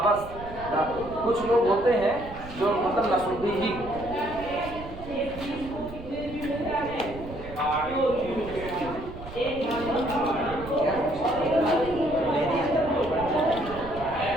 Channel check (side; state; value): right; noise; rumble, 13 dB below the sound